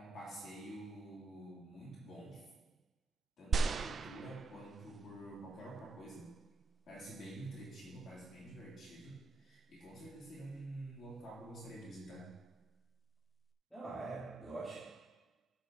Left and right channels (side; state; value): left; quieter; 3.7 dB